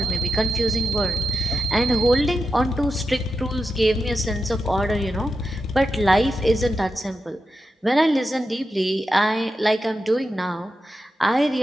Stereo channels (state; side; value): normal; both; correlation 0.89